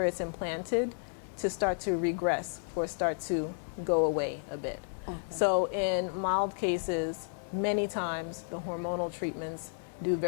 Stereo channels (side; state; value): right; silent; digital silence